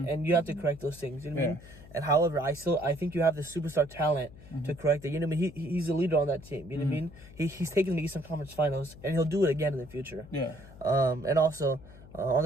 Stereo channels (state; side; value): noise; left; hum, 19 dB below the sound